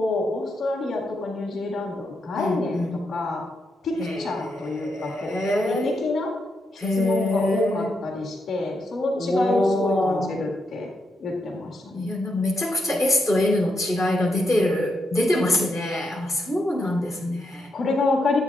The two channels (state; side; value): normal; both; correlation 0.82